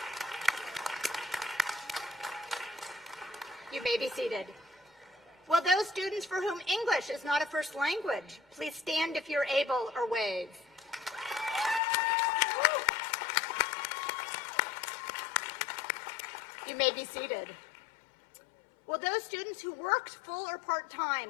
You may be seated. Will those students for whom English is not a first language, please stand if you're able or wave. You may be seated. Will those students who worked full or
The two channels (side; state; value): right; drops out; at 11.8 s